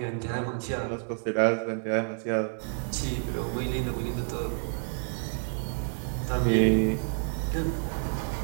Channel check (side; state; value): left; silent; digital silence